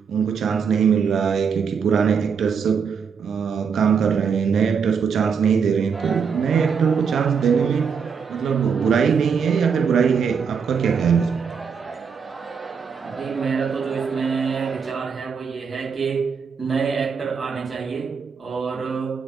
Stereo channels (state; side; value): quieter; left; 6.2 dB